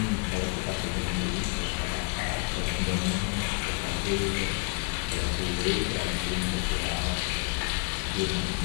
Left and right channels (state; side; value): quieter; right; 34.3 dB